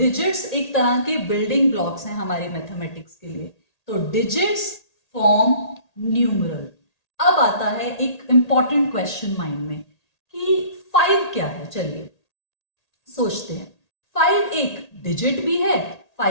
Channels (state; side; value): late; right; 1.8 ms